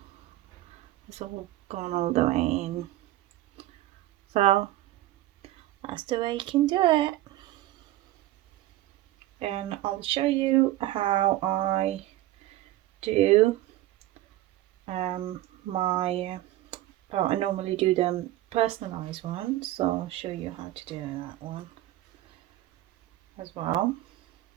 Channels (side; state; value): left; quieter; 15.6 dB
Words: It's all gone all the way in. So that's the way you can do it. And I'll show you how I do I normally do them personalized ones, so I'll show you how to do that one as well.